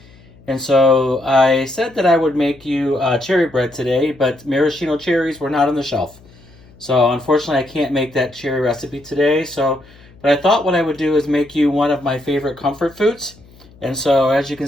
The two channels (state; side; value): noise; left; hum, 25 dB below the sound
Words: And so I said that I would make you cherry bread today, but maraschino cherries were not on the shelf. So unfortunately I can't make that cherry recipe today. But I thought what I would do is make you one of my favorite comfort foods. And so as you can